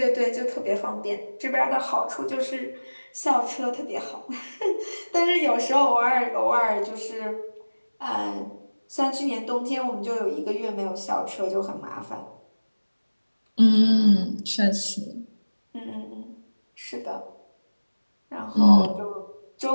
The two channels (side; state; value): both; inverted; correlation -1.00